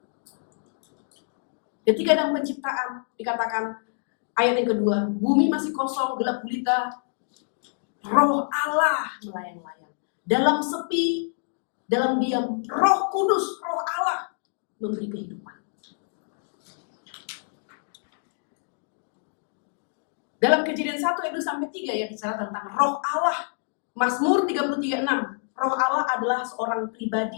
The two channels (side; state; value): right; silent; 60 dB below the other